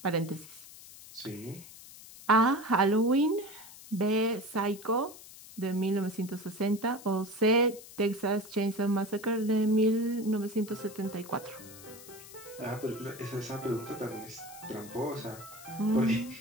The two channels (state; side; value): noise; left; hiss, 17 dB below the sound